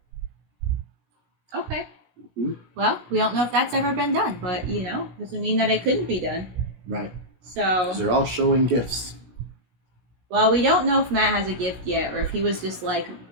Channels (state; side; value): late; left; 17 ms